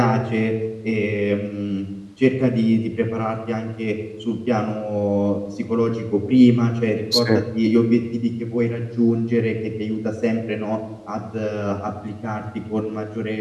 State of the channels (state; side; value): identical; both; correlation 1.00